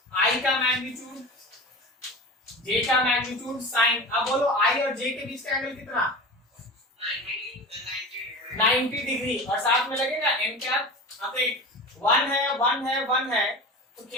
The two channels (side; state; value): both; normal; correlation 0.32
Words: आई का मैग्नीट्यूड, जे का मैग्नीट्यूड, साइन। अब बोलो आई और जे के बीच का एंगल कितना? 90 डिग्री और साथ में लगेगा एन कैप। अब एक 1 है 1 है 1 है तो